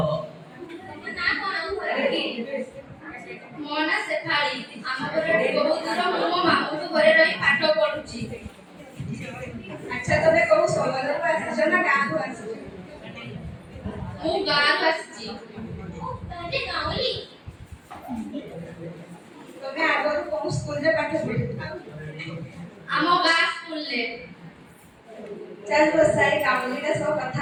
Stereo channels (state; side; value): identical; both; correlation 1.00